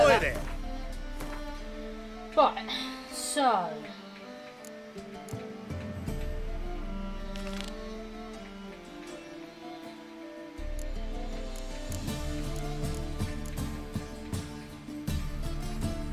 go. there. Right, so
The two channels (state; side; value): identical; both; correlation 1.00